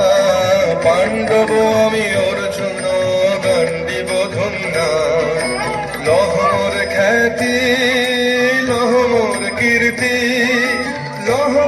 পাণ্ডব আমি অর্জুন গান্ডীব ধন্যা লহর খ্যাতি লহর কীর্তি লহ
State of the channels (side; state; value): both; identical; correlation 1.00